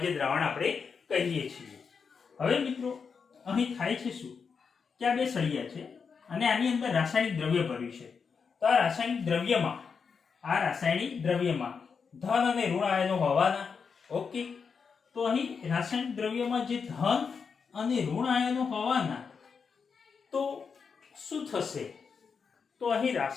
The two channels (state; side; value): quieter; right; 5.8 dB